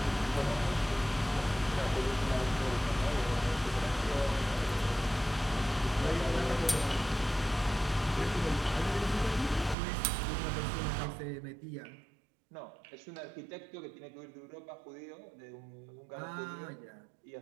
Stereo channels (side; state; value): left; drops out; at 9.8 s